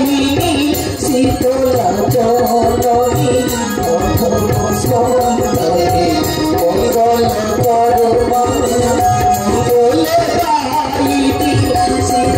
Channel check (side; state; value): both; identical; correlation 1.00